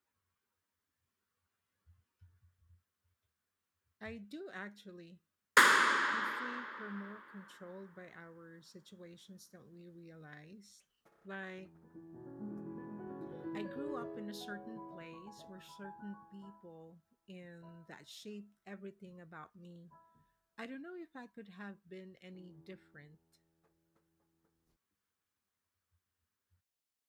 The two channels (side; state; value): both; identical; correlation 1.00